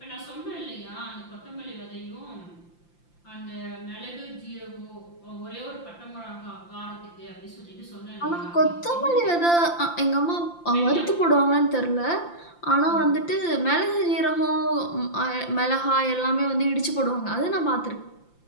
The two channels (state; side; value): late; right; 5.8 ms